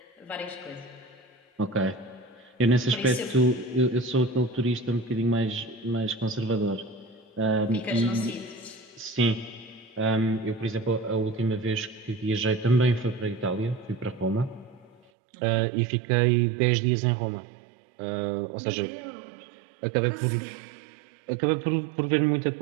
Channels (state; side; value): drops out; left; at 15.1 s